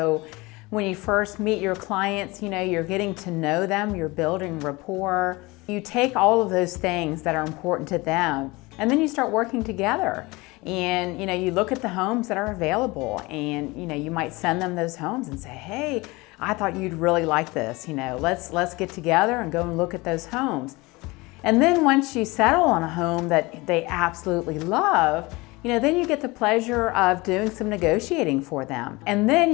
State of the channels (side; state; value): right; quieter; 23.2 dB